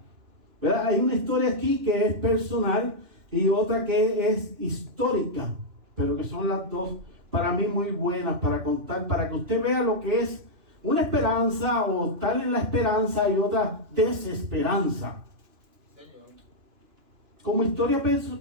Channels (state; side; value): late; left; 2.9 ms